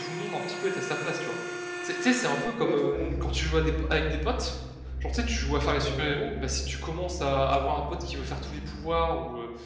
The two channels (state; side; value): identical; both; correlation 1.00